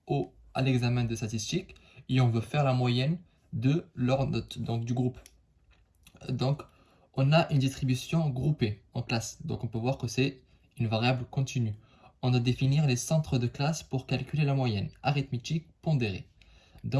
à l'examen de statistiques et on veut faire la moyenne de leurs notes, donc du groupe. Donc, on a une distribution groupée en classe. Donc, on peut voir que c'est une variable continue. On doit définir les centres de classe pour calculer la moyenne, arithmétique pondérée.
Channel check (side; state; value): both; identical; correlation 1.00